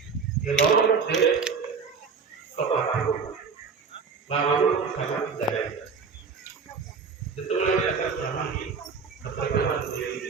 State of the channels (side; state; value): left; quieter; 5.4 dB